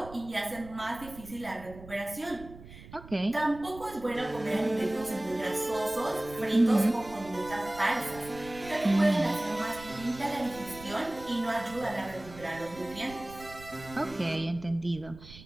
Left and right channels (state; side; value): noise; right; rumble, 17 dB below the sound